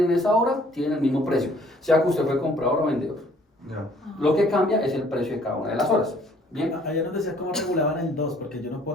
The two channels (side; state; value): both; normal; correlation 0.59